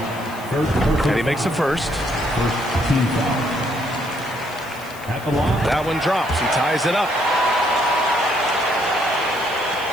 And he makes the first. That one drops. He ties it up.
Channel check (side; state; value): left; noise; hiss, 20 dB below the sound